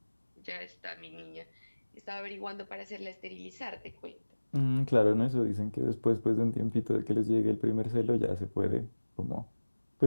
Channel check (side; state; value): both; inverted; correlation -1.00